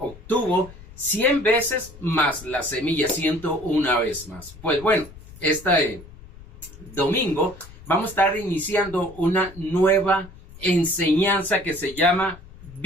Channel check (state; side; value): noise; left; rumble, 19 dB below the sound